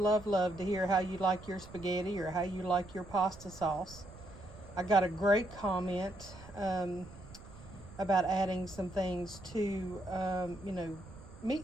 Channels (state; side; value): noise; right; rumble, 17 dB below the sound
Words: love to hear how you like your spaghetti or how you like your pasta sauce. I got a great comment about adding some things to, you know,